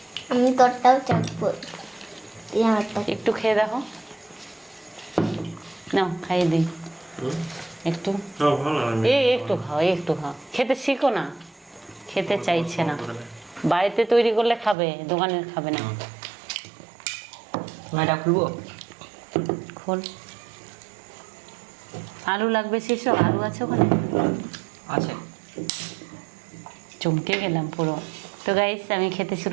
আমি তোরটাও চাখবো, একটু খেয়ে দেখো, নাও খাইয়ে দিই একটু। একটু খাও, একটু খাও, খেতে শিখো না। খেতে চাইছে না, বাড়িতে তৈরি করলে খাবে, দোকানের খাবে না। এটা খুলবো? খোল। আলু লাগবে সেসব? আলু আছে ওখানে? আছে। চমকে গেলাম পুরো। তো গাইস আমি খেতে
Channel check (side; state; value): left; drops out; at 14.8 s